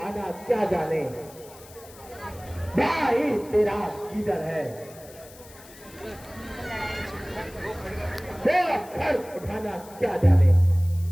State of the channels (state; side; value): noise; left; hiss, 21 dB below the sound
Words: क्या जाने, भाई तेरा किधर है। वो घर उठाना क्या जाने,